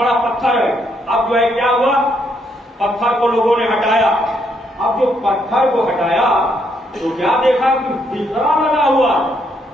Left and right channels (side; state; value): both; normal; correlation 0.74